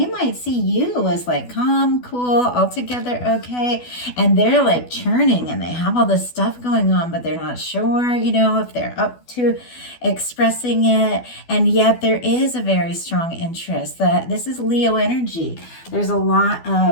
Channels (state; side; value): late; right; 12 ms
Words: might see you as like calm, cool, altogether okay, and they're like churning and they have all this stuff going on, but they're not sure, you know, if they're up to expressing it. And yet there is a very strong interest. That this is Leo energy. There's a lot